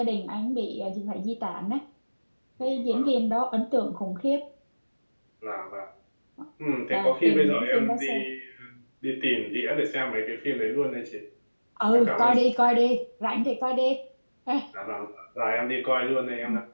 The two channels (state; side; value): inverted; both; correlation -1.00